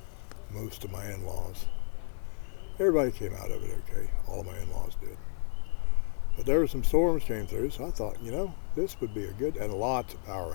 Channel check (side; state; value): right; silent; 57 dB below the other